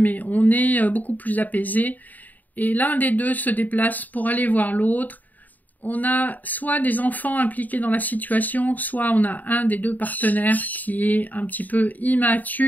on est beaucoup plus apaisé, et l'un des deux se déplace pour aller voir l'autre. On a soit des enfants impliqués dans la situation, soit on a un des deux partenaires qui est un petit peu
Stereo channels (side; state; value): right; late; 0.082 ms